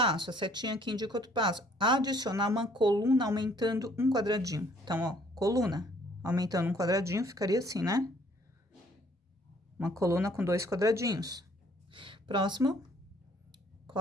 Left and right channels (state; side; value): normal; both; correlation 0.61